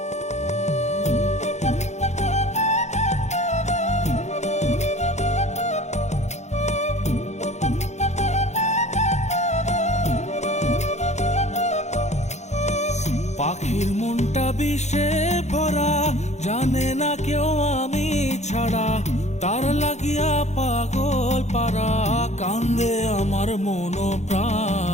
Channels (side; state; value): right; late; 0.33 ms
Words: পাখির মনটা বিষে ভরা, জানে না কেউ আমি ছাড়া, তার লাগিয়া পাগল পারা, কান্দে আমার মন